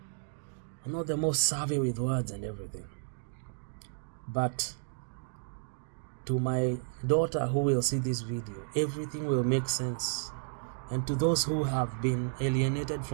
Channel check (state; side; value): silent; left; digital silence